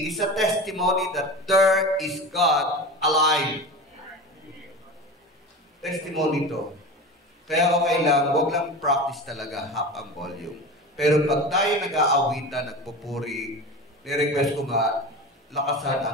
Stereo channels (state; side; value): normal; both; correlation 0.30